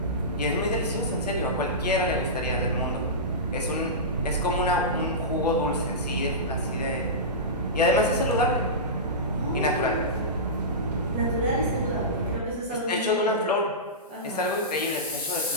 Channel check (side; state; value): both; normal; correlation -0.18